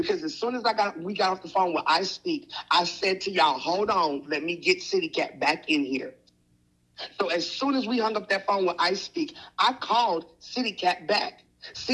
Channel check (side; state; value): both; identical; correlation 1.00